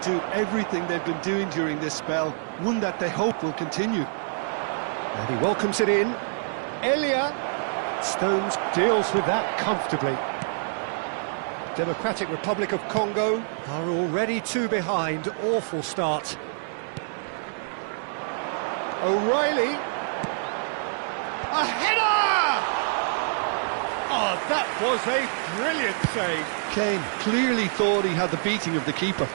everything they've been doing during this spell, one that they hope will continue. And he welcomes it in. Elia. Stones deals with that comfortably. Democratic Republic of Congo are already 2 behind. Awful start. O'Reilly. A header! Oh, that was a brilliant save. Kane clearly thought he had the beating of the keeper.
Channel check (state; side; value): silent; left; digital silence